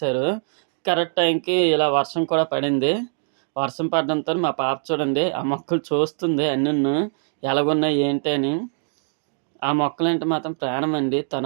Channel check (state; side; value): silent; left; 59 dB below the other